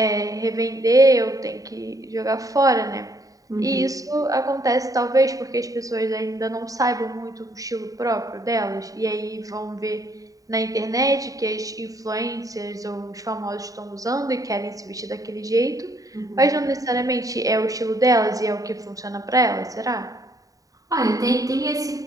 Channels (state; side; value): late; left; 0.17 ms